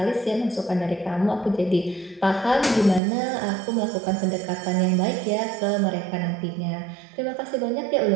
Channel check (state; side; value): drops out; left; at 3.0 s